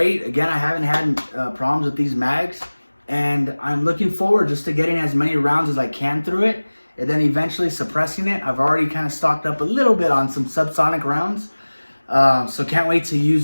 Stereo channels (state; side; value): inverted; both; correlation -1.00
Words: Again, I haven't had problems with these mags. And I'm looking forward just to getting as many rounds as I can through it. And then eventually suppressing it. I've already kind of stocked up a little bit on some subsonic rounds. So can't wait to